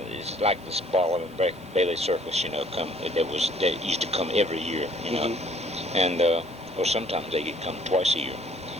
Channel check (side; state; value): both; normal; correlation 0.58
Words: like this Ball and Bailey Circus, that used to come every year, Mm-hmm. And or sometimes they could come twice a year.